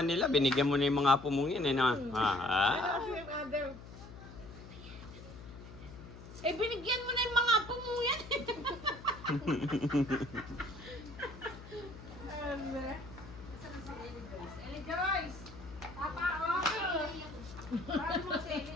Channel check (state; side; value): noise; left; hum, 15 dB below the sound